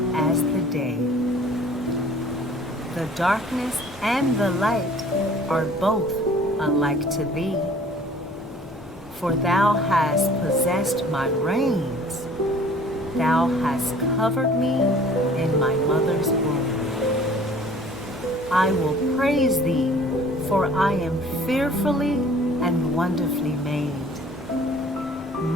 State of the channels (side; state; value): both; normal; correlation 0.51